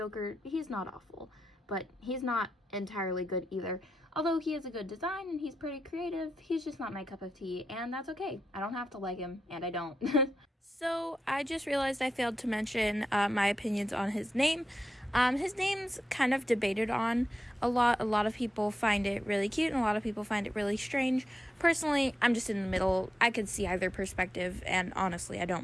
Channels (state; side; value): normal; both; correlation 0.88